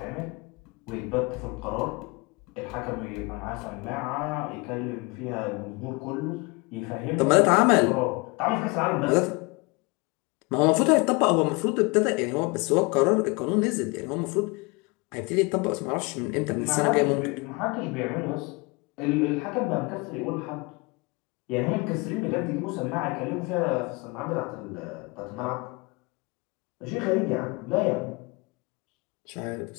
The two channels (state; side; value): quieter; right; 27.5 dB